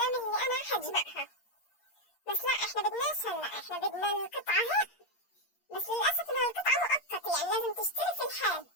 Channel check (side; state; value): right; late; 8.6 ms